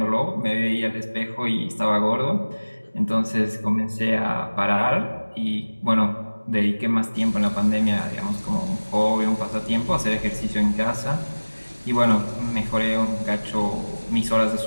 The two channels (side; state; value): both; inverted; correlation -1.00